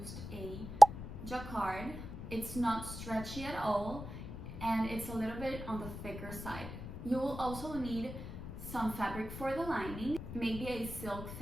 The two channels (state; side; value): noise; left; rumble, 10 dB below the sound